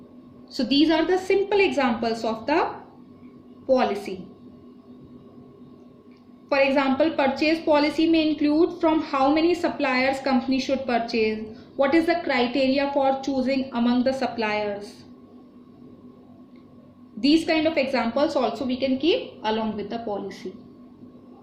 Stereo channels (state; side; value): identical; both; correlation 1.00